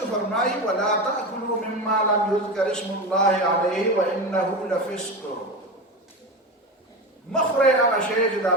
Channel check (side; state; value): both; normal; correlation 0.22